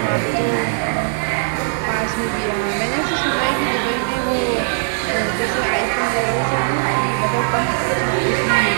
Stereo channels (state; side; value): silent; left; 60 dB below the other